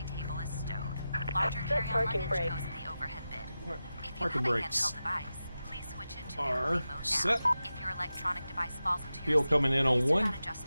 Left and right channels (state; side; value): inverted; both; correlation -0.93